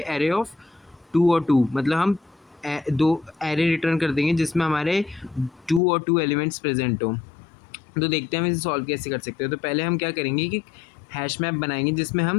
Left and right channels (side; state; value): right; drops out; at 5.8 s